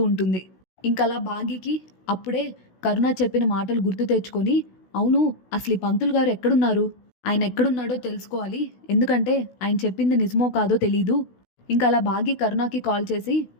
ఉంటుంది. ఇంకలా భాగికి అప్పుడే కరుణ చెప్పిన మాటలు గుర్తు తెచ్చుకొని, అవును అసలు ఈ పంతులు గారు ఎక్కడున్నారు, ఆయన ఎక్కడున్నాడో తెలుసుకోవాలి, ఎందుకంటే ఆయన చెప్పింది నిజమో కాదో తెలీదు. ఇంకా అలా భాగి కరుణకి కాల్ చేసి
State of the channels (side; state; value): right; late; 16 ms